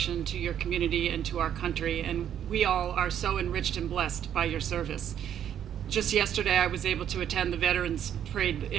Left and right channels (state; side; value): quieter; left; 9.8 dB